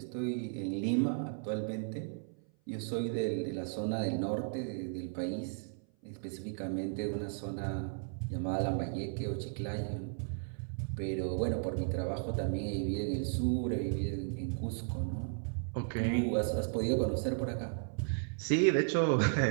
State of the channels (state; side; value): silent; left; 54 dB below the other